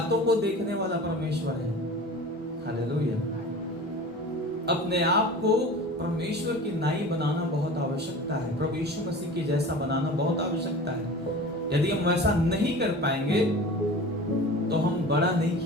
को देखने वाला परमेश्वर है। हालेलुया। अपने आप को परमेश्वर की नाई बनाना बहुत आवश्यकता है, प्रभु यीशु मसीह के जैसा बनाना बहुत आवश्यकता है। यदि हम वैसा नहीं कर पाएंगे तो हम बड़ा नहीं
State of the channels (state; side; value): normal; both; correlation 0.37